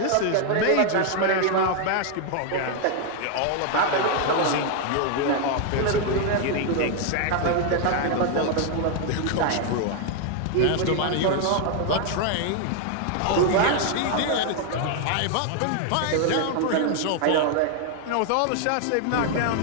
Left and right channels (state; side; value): different; both; correlation 0.00